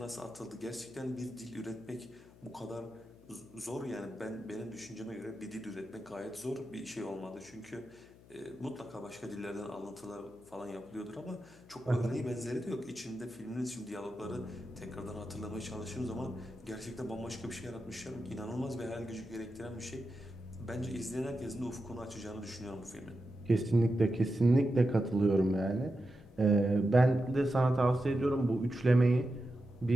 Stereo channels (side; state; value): left; noise; hum, 23 dB below the sound